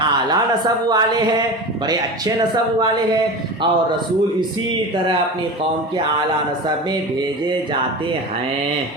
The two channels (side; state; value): both; normal; correlation 0.29